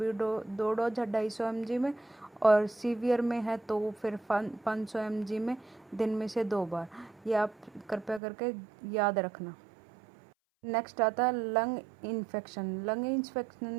2 डोज है 250 mg में, और सीवियर में है तो फिर 500 mg में दिन में से 2 बार। ये आप कृपया करके याद रखना। नेक्स्ट आता है लंग इन्फेक्शन। लंग इन्फेक्शन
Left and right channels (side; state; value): left; drops out; at 8.2 s